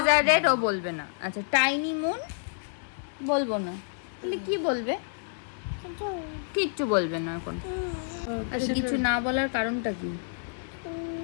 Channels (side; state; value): right; silent; digital silence